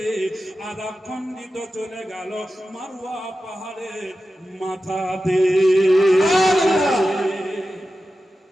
আর এক খণ্ডিত চলে গেল মারওয়া পাহাড়ের মাথাতে।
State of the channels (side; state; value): both; normal; correlation 0.93